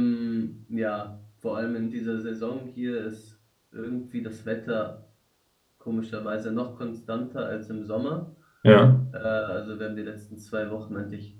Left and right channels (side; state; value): both; identical; correlation 1.00